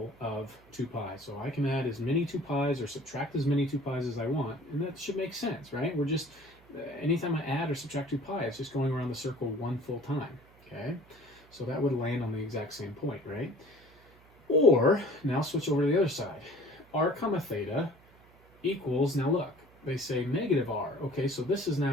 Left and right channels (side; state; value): right; noise; hum, 27 dB below the sound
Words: of 2 pi. So I can add as many 2 pi's or subtract as many 2 pi's as I want, and that should make sense, right? We're just, anytime I add or subtract 2 pi, it's just going around the circle one full time, okay? So that would land on the exact same point, right? Or, now switch over to the other side. R comma theta equals, now look, they say negative r. Okay, so this is